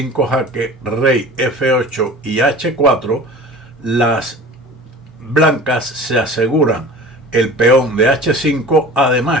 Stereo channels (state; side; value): normal; both; correlation 0.40